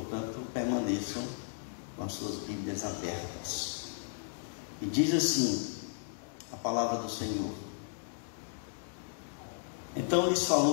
permaneçam com as suas Bíblias abertas. E diz assim a palavra do Senhor: Então lhes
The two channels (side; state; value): right; silent; digital silence